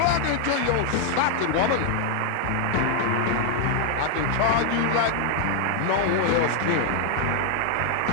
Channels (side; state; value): both; different; correlation 0.00